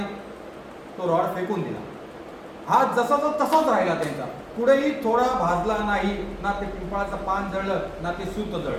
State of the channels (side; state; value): both; identical; correlation 1.00